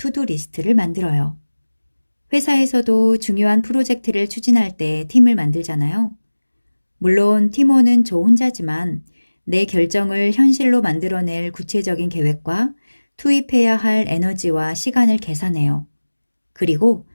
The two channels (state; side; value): inverted; both; correlation -1.00